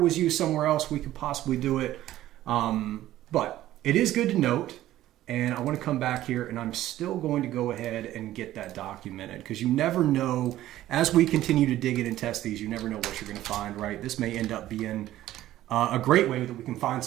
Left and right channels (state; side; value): quieter; left; 14.1 dB